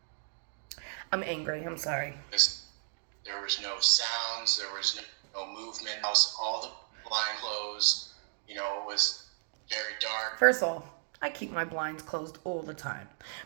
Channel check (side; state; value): left; silent; digital silence